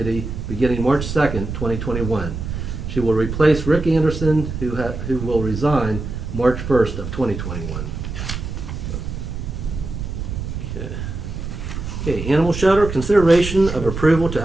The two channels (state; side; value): noise; right; rumble, 6 dB below the sound